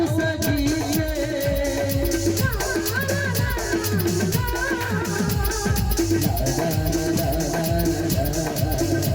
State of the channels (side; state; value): both; identical; correlation 1.00